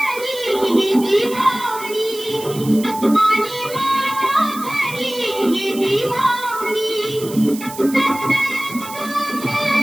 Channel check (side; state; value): right; noise; hiss, 14 dB below the sound